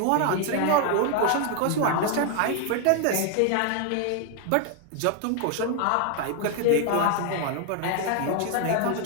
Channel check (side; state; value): both; different; correlation 0.00